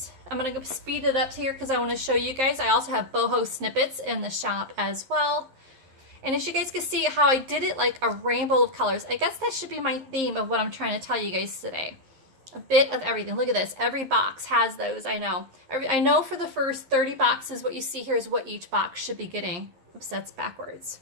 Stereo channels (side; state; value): left; late; 11 ms